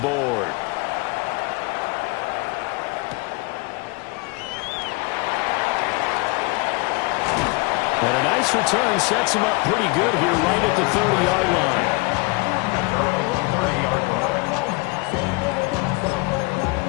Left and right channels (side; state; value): right; quieter; 26.8 dB